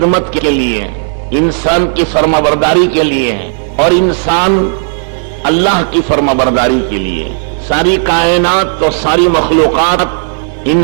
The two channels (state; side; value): silent; left; digital silence